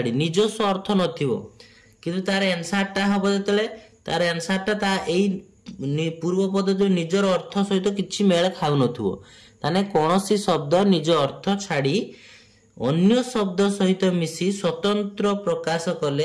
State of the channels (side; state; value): both; identical; correlation 1.00